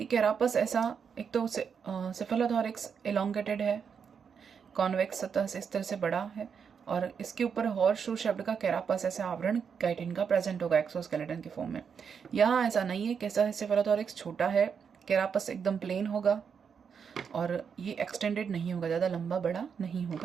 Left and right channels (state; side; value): quieter; left; 6.7 dB